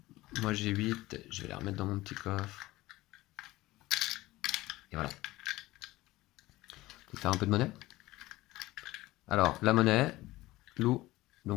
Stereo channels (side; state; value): right; quieter; 18.5 dB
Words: Moi j'ai 8. Je vais les remettre dans mon petit coffre. Et voilà. Je vais faire un peu de monnaie. Alors, la monnaie, Lou,